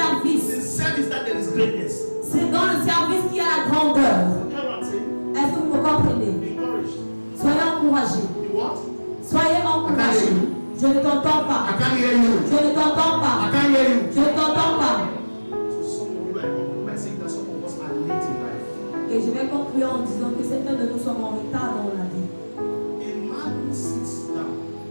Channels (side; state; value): both; inverted; correlation -1.00